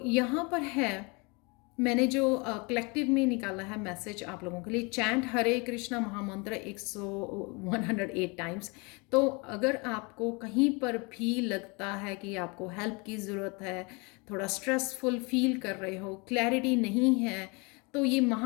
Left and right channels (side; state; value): right; quieter; 29.3 dB